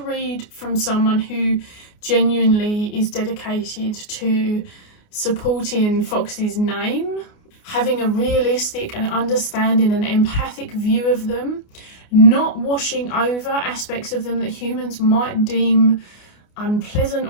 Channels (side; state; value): right; late; 29 ms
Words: read from someone who genuinely is dedicated to supporting Fox's name, having a realistic and understanding and empathic view of them, not washing over aspects of them that humans might deem unpleasant